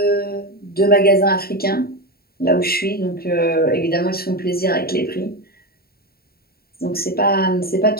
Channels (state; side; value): late; right; 0.45 ms